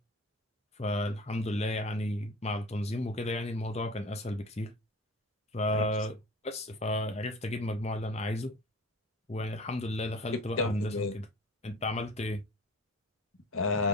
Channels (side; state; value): both; normal; correlation 0.39